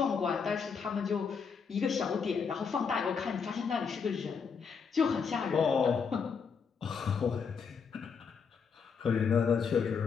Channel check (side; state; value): right; quieter; 6.0 dB